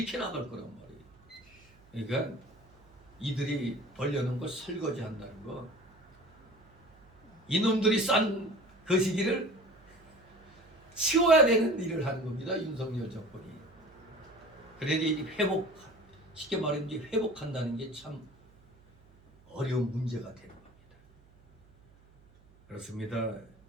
나갈 거란 말이에요. 그러니까 이들이 벌려놓은 걸 설거지 한다는 거, 이놈들이 싼 거시기를 치워야 되는 일을 하는 겁니다. 윤석열 정권이. 그래야 쉽게 말하면 이제 회복한다는 게 참 어려운 문제가 되는 겁니다. 그렇습니다.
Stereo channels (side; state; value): right; noise; hum, 28 dB below the sound